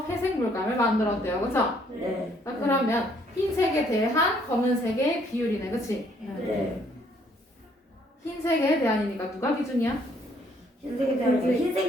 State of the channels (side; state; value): both; normal; correlation 0.66